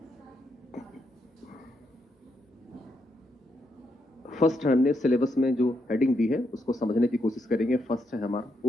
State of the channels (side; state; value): both; normal; correlation 0.80